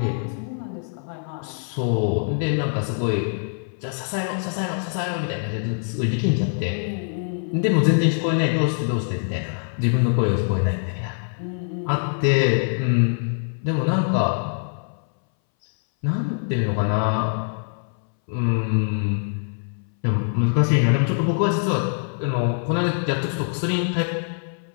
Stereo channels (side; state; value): right; silent; 61 dB below the other